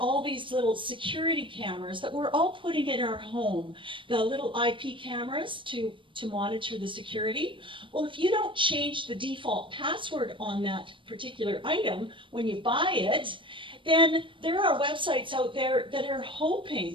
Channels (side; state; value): left; late; 0.25 ms